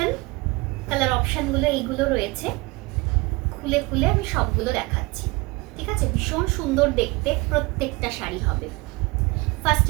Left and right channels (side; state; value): left; quieter; 24.5 dB